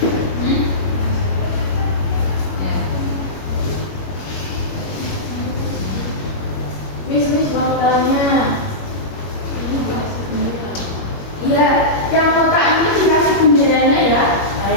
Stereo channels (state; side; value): late; right; 21 ms